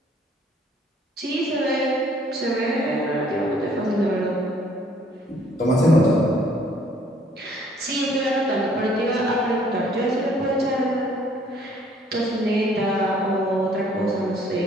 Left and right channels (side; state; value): both; normal; correlation 0.61